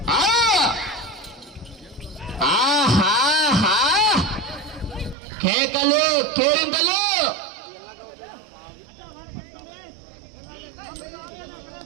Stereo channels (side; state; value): left; drops out; at 5.2 s